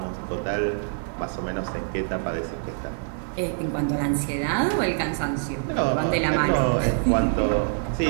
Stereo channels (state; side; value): silent; left; digital silence